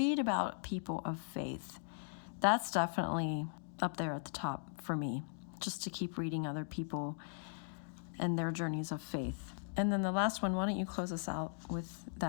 about people of faith. That's definitely up there at the top for me, just to keep reading other people and their journeys of faith. And then the last one, why don't you close us out with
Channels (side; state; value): right; silent; digital silence